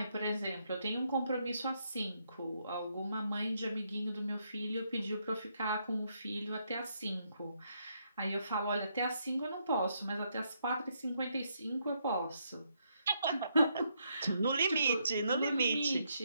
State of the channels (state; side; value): inverted; both; correlation -0.76